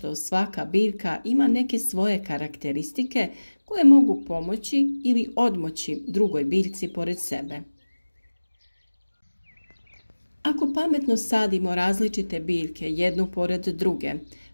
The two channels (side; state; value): both; inverted; correlation -1.00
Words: svaka biljka ima neke svoje karakteristike koje mogu pomoći ili odmoći drugoj biljci pored sebe. Ako pametno sadimo različite biljke jednu pored druge,